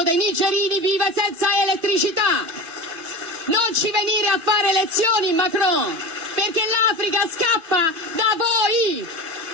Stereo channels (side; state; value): left; late; 2.6 ms